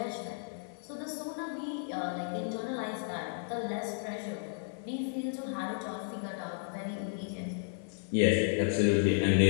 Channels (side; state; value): right; silent; digital silence